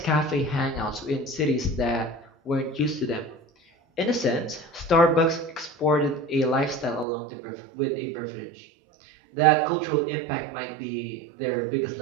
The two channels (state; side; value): drops out; left; at 7.1 s